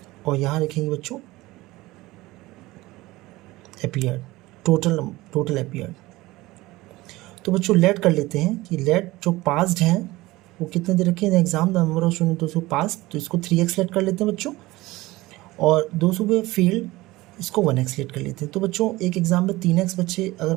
और यहाँ लिखेंगे बच्चों अपीयर्ड, टोटल अपीयर्ड। तो बच्चों लेट कर लेते हैं कि लेट जो पास्ड हैं वो कितने दे रखे हैं exam, the number of student दोस्तों पास, तो इसको 3x लेट कर लेते हैं बच्चों, और 200 पे फेल्ड इसको 1x लेट कर लेते हैं। तो बच्चों एक एग्जाम में 3x बच्चे अगर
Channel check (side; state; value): left; quieter; 19.3 dB